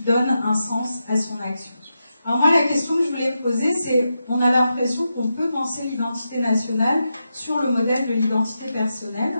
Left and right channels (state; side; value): inverted; both; correlation -0.88